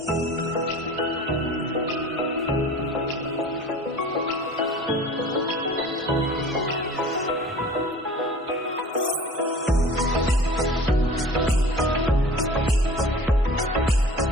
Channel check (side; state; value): both; normal; correlation 0.42